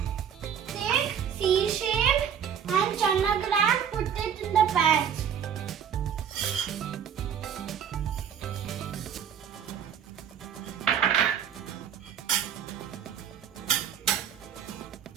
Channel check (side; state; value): left; quieter; 8.3 dB